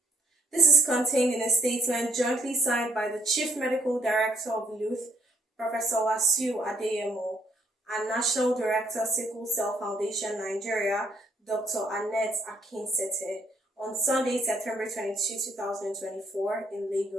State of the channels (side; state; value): both; normal; correlation 0.70